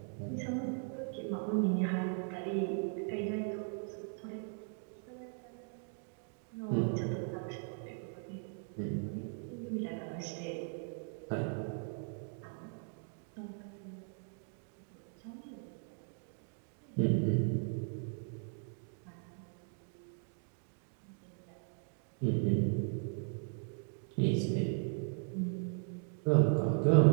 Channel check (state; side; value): silent; left; 52 dB below the other